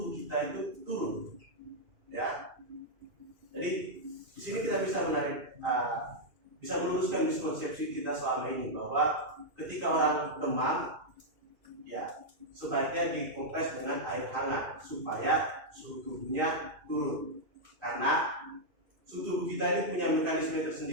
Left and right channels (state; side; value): late; left; 2.5 ms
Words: kita itu turun, ya. Jadi di sini kita bisa bisa meluruskan miskonsepsi kita selama ini bahwa ketika orang demam, ya sebaiknya dikompres dengan air hangat supaya suhu tubuhnya turun. Karena suhu tubuh kita ini punya mekanisme